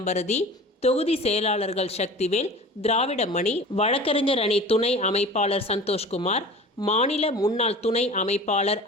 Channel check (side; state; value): both; normal; correlation 0.39